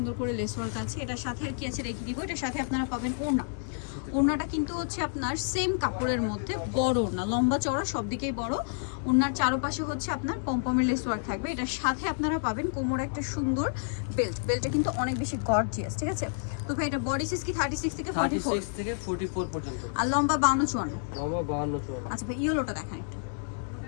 করে লেস ওয়ার্ক আছে। এটার সাথে আর কি আছে রেখে দিব। এটার সাথে আপনারা পাবেন ওড়না। ওড়নাটা কিন্তু হচ্ছে আপনার সেম কাপড়ের মধ্যে বড় ওড়না, লম্বা চওড়া সব দিকেই বড়। ওড়নার চারপাশে হচ্ছে আপনার পমপমের লেস ওয়ার্ক থাকবে। এটার সাথে আপনারা পাবেন কোমরে একটা সুন্দর বেল্ট। বেল্টটা কিন্তু অনেক বেশি গর্জিয়াস, ঠিক আছে? তো ভাই এটা বডি সাইজ কি 36 থেকে 44 পর্যন্ত, আর লম্বা 52 54? লম্বা 52 54। আচ্ছা ভাই ইয়েলোটা দেখান একটু।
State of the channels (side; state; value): right; silent; 58 dB below the other